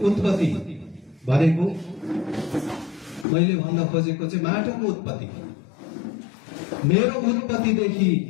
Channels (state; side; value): drops out; right; at 3.2 s